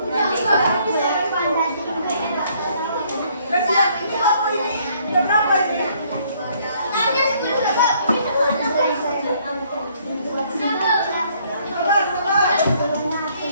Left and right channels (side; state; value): both; inverted; correlation -0.64